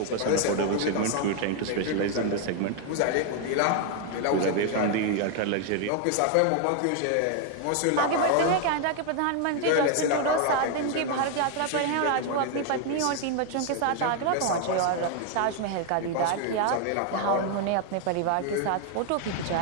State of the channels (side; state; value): both; different; correlation 0.00